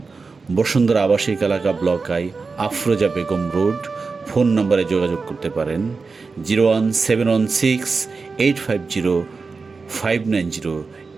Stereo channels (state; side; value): quieter; left; 4.4 dB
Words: বসুন্ধরা আবাসিক এলাকা, block I, Afroza Begum road. Phone নম্বরে যোগাযোগ করতে পারেন 01716 850 590